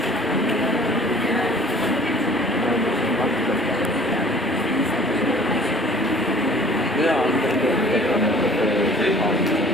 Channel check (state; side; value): normal; both; correlation 0.50